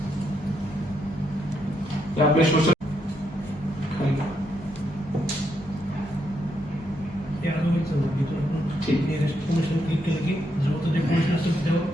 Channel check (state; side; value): normal; both; correlation 0.79